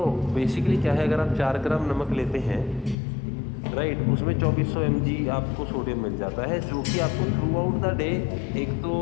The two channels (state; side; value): drops out; right; at 3.0 s